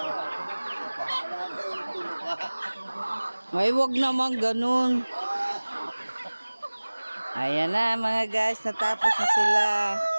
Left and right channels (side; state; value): both; inverted; correlation -1.00